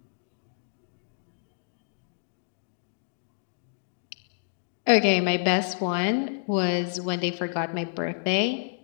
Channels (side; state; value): right; silent; digital silence